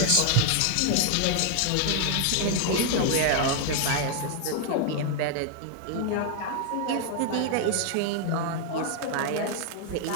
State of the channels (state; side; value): different; both; correlation 0.00